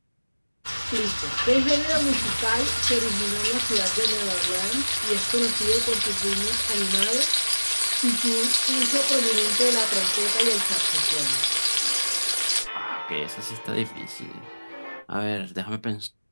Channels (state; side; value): inverted; both; correlation -1.00